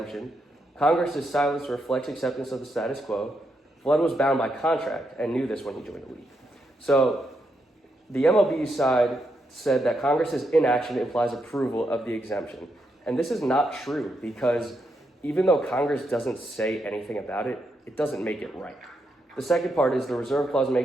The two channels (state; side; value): normal; both; correlation 0.81